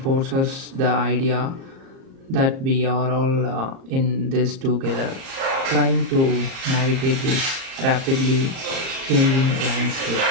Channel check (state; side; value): late; left; 38 ms